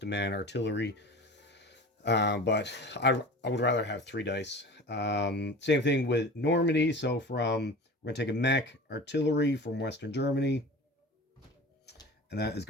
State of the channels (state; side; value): normal; both; correlation 0.36